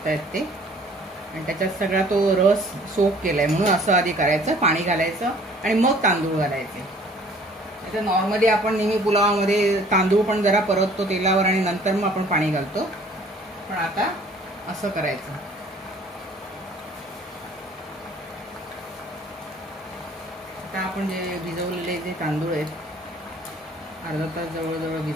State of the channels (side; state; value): both; normal; correlation 0.54